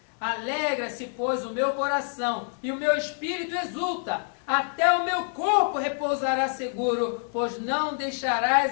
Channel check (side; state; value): right; silent; 60 dB below the other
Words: Alegra-se, pois, o meu coração, e o meu espírito exulta. Até o meu corpo repousará seguro, pois não